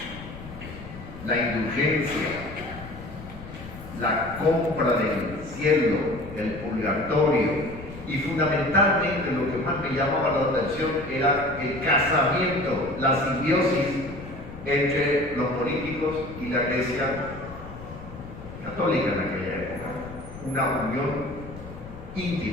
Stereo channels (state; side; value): noise; left; rumble, 14 dB below the sound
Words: La indulgencia, la compra del cielo, el purgatorio, y fundamentalmente lo que más me llamaba la atención era el casamiento, la simbiosis entre los políticos y la Iglesia católica en aquella época. Una unión